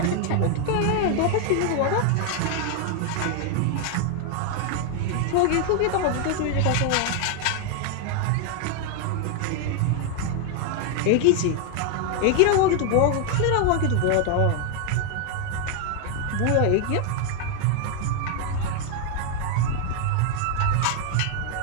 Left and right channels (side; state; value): both; different; correlation 0.00